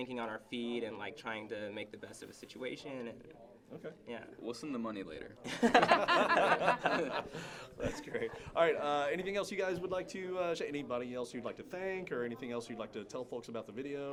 on our feet and, like, trying to make the best of a situation. And, okay. Yeah. We'll send the money later. That's great. All right. Anything else you guys would like to share? Anybody else you'd like to thank, or anything else you'd like to tell folks about the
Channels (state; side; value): identical; both; correlation 1.00